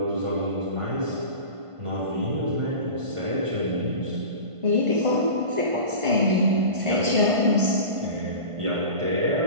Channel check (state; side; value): late; left; 1.5 ms